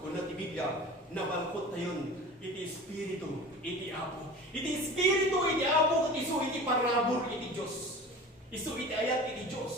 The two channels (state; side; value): normal; both; correlation 0.37